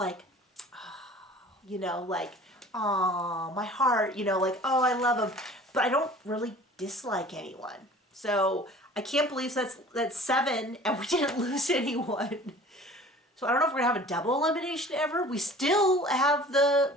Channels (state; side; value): normal; both; correlation 0.46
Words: oh, you know, like, oh, my heart, you know, like, oh, I love them. But I don't really dislike anyone. So I can't believe that's 7 and we didn't lose anyone. So I don't know if we're going to have a double elimination ever. We still have